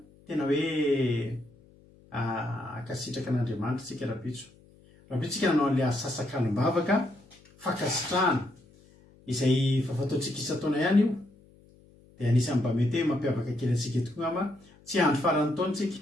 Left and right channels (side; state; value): left; noise; hum, 27 dB below the sound